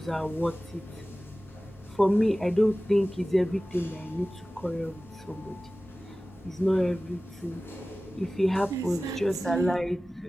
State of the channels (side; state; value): both; normal; correlation 0.97